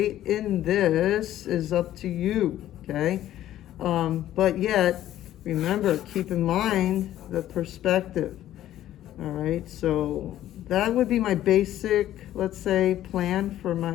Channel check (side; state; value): right; quieter; 12.8 dB